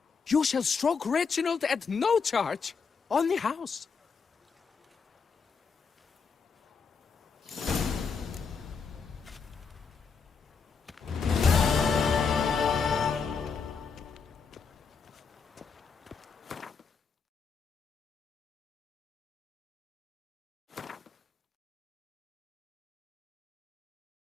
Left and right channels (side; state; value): right; quieter; 5.6 dB